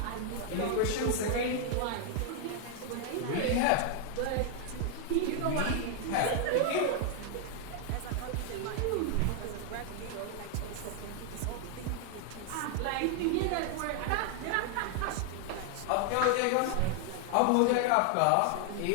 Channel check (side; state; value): both; different; correlation 0.00